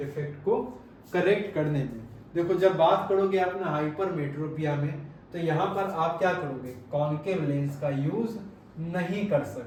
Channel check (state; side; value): identical; both; correlation 1.00